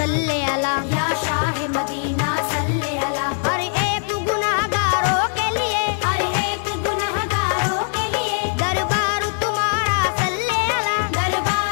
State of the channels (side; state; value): right; silent; 65 dB below the other